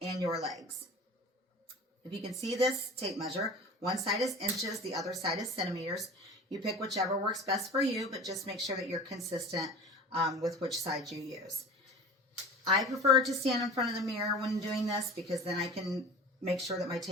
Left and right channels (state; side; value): normal; both; correlation 0.38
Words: and your legs. If you can see this tape measure, one side is inches, the other side is centimeters. You pick whichever works best for you, but just make sure that you're consistent with which side you use. I prefer to stand in front of the mirror when doing this because then I can make sure that my